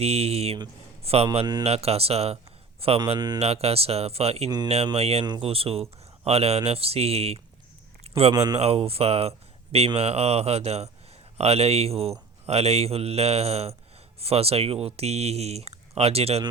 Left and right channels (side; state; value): left; quieter; 4.3 dB